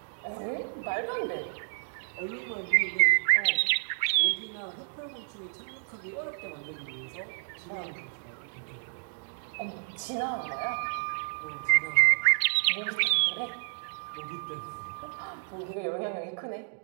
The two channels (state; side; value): silent; left; 57 dB below the other